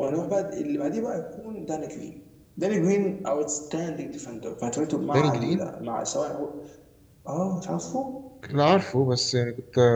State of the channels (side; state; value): both; identical; correlation 1.00